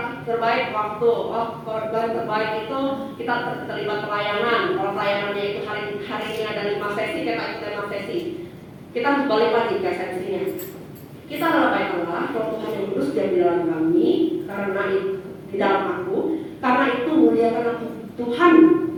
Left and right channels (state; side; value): identical; both; correlation 1.00